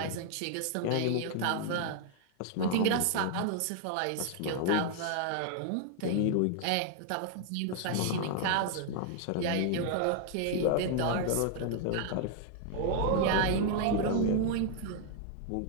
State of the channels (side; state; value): both; different; correlation 0.00